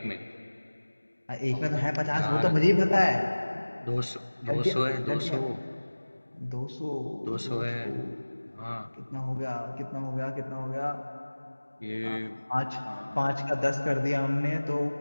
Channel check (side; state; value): both; inverted; correlation -1.00